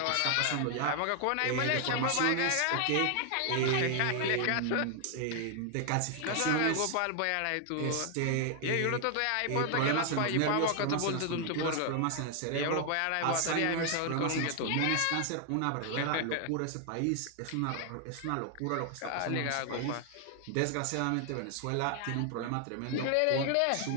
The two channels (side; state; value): both; different; correlation 0.00